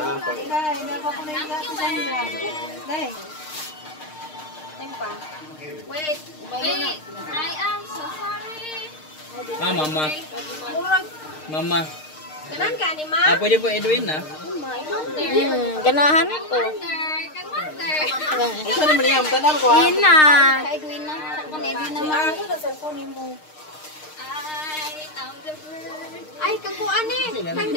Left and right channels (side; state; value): right; late; 6.5 ms